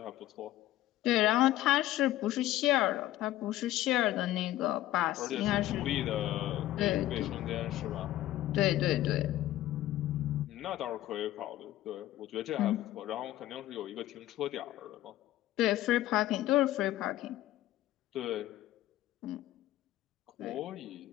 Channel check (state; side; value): quieter; right; 14.7 dB